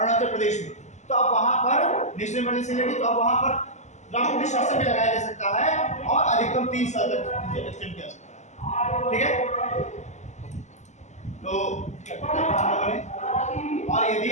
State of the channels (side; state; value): right; late; 0.34 ms